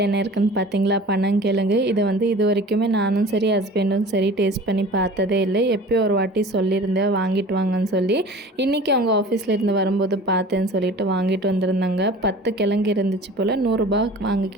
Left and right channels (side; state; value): both; normal; correlation 0.42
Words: என்ன இருக்குதுன்னு பார்த்தீங்களா? பனங்கிழங்கு. இதை வந்து இது வரைக்குமே நானும் சரி ஹஸ்பண்டும் சரி டேஸ்ட் பண்ணி பார்த்ததே இல்லை. எப்போயோ ஒரு வாட்டி சொல்லியிருந்தேன் வாங்கிட்டு வாங்கன்னு சொல்லி. இன்றைக்கி அவங்க ஆஃபீஸில் இருந்து வரும்போது பார்த்தேன்னு சொல்லிட்டு வாங்கிட்டு வந்திருந்தாங்க. 10 கிழங்கு இருந்துச்சு போல். 100